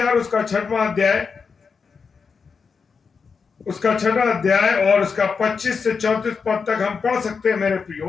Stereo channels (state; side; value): quieter; right; 5.4 dB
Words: उसका 6वां अध्याय और उसका 25 से 34 पद तक हम पढ़ सकते हैं। मेरे प्रियो,